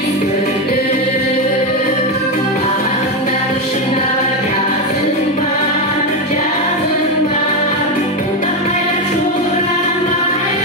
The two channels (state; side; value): normal; both; correlation 0.09